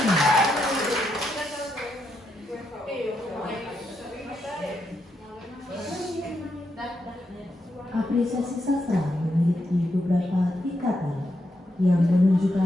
apresiasi sastra memiliki beberapa tingkatan yang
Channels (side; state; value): both; normal; correlation 0.82